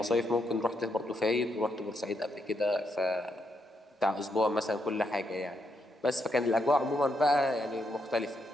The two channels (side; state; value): both; normal; correlation 0.79